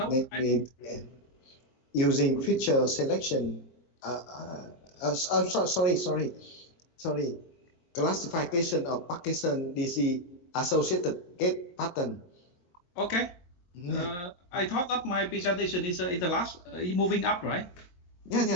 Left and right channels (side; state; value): right; late; 22 ms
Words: using feature selection. Sorry. Classification of Parkinson disease associated gait pattern. Okay. I thought that my presentation is the last, moving up, right?